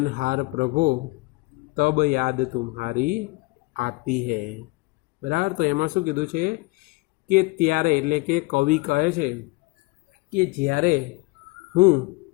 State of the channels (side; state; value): right; quieter; 24.3 dB